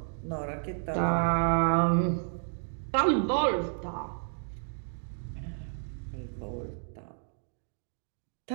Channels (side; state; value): left; silent; 57 dB below the other